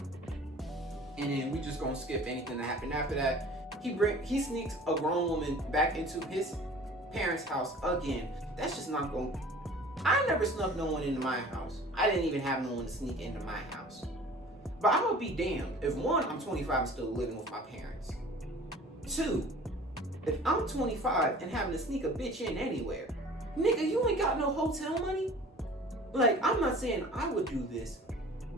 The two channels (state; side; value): normal; both; correlation 0.45